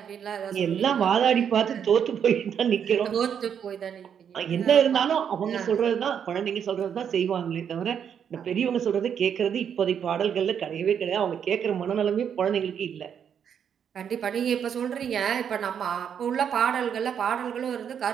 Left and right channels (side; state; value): left; quieter; 8.1 dB